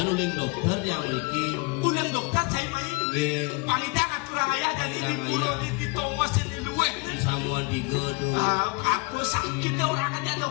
uling dokter yang niki Ulang dokter cai main. nggih Pangita ngaturang ayah dari di Idang pulau ayah. di Thomas di luar. gue. Samuan 3 tuh. Apa sakitnya orang aja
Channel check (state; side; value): quieter; right; 28.4 dB